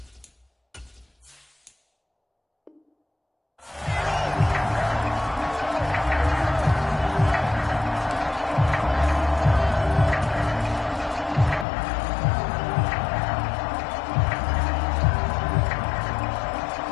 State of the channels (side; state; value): right; drops out; at 11.7 s